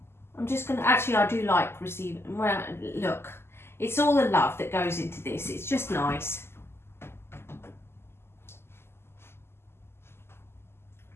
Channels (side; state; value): right; late; 0.12 ms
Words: I'm just gonna, actually I do like receiving, well, look, it's all the love that goes into this. It's just nice.